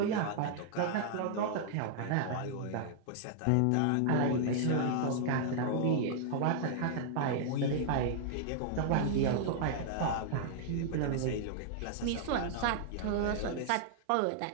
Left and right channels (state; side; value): different; both; correlation -0.01